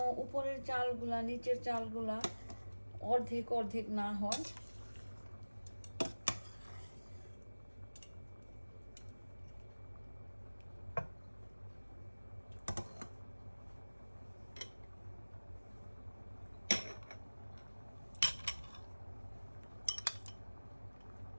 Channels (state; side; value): inverted; both; correlation -1.00